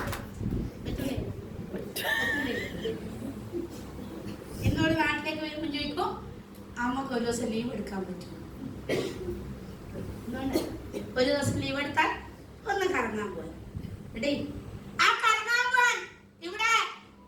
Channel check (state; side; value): identical; both; correlation 1.00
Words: എന്നോട് നാട്ടിലേക്ക് വരുമ്പോൾ ചോദിക്കും, അമ്മക്ക് ഒരു ദിവസം ലീവ് എടുക്കാൻ പറ്റും? ഒരു ദിവസം ലീവ് എടുത്താൽ ഒന്ന് കറങ്ങാൻ പോയി. ആ കറങ്ങാൻ പോവാൻ ഇവിടെ